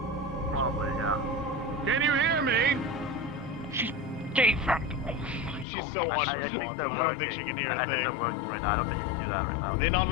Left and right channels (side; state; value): right; drops out; at 5.7 s